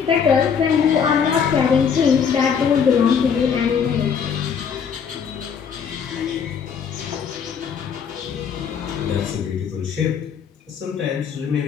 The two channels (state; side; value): quieter; right; 6.9 dB